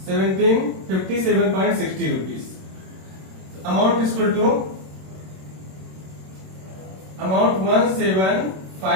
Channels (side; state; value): left; late; 26 ms